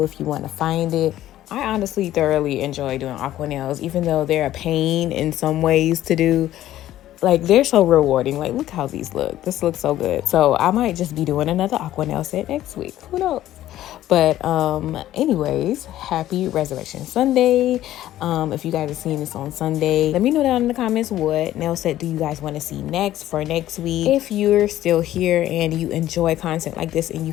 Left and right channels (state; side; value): quieter; right; 13.5 dB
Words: if you want to find it. I honestly thoroughly enjoy doing aqua nails, even though they're a pain in some ways to do. Like, they're so rewarding. Like, look how these look. This looks so good. So I might just be doing another aqua nail set next week. Who knows? But anyways, happy Resurrection Sunday. If you guys are seeing this on Sunday, let me know down in the comments what nail set do you guys want to see next for next week. If you're still here and you enjoy content like this and you